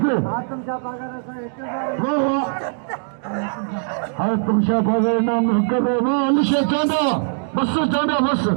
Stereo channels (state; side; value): silent; left; digital silence